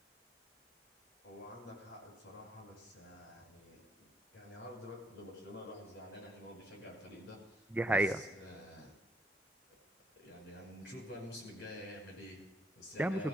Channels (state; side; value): normal; both; correlation 0.69